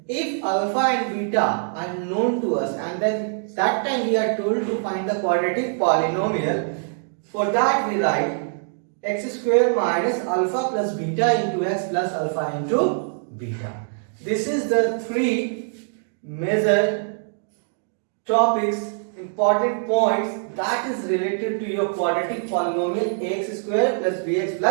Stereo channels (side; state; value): left; silent; digital silence